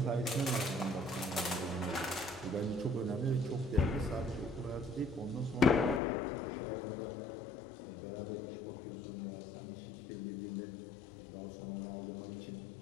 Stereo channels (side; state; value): right; drops out; at 6.0 s